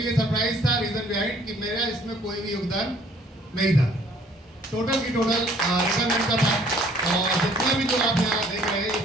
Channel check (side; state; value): both; normal; correlation 0.59